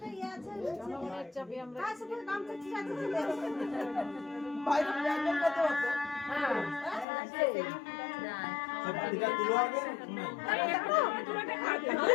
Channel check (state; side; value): drops out; right; at 7.1 s